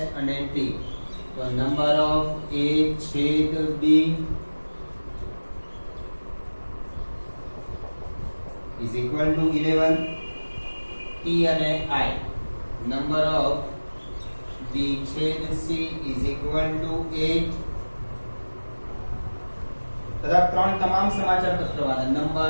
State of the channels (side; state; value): both; inverted; correlation -1.00